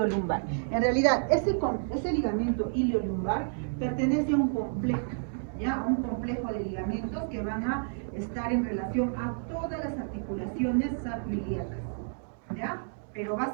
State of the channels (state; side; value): silent; left; digital silence